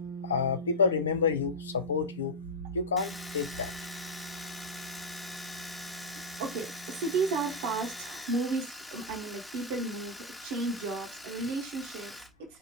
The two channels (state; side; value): normal; both; correlation -0.04